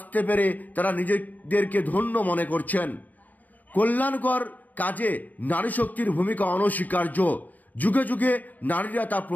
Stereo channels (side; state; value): right; late; 0.081 ms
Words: পেরে তারা নিজেদেরকে ধন্য মনে করছেন। কল্যাণকর কাজে নারী শক্তির ভূমিকা অনস্বীকার্য। যুগে যুগে নারীরা তা